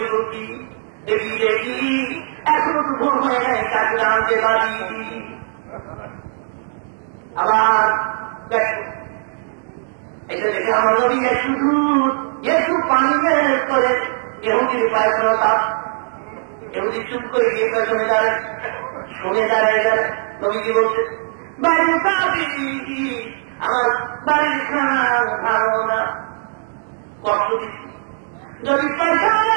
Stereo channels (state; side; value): silent; left; digital silence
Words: দেখি এখনো তো ভুল হয়ে যায় তাকে জানতে পারি। আবার এটা দেখে আমার নবী একটু দুধ একটু পানি ম্যানেজ করে এহুদির পায়খানা তাপ এহুদি চুপ করে গিয়ে পেছনে দাঁড়ায় শুনে দাঁড়ায় নবীজি বলছে বাড়ির আমার বাড়ির খানা ভালো না কষ্ট দিচ্ছি যদি পায়খানা